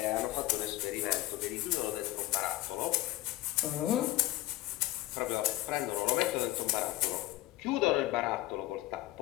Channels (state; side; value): quieter; right; 16.8 dB